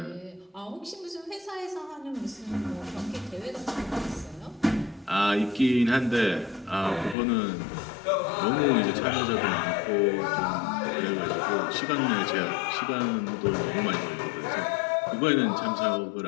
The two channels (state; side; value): drops out; right; at 7.2 s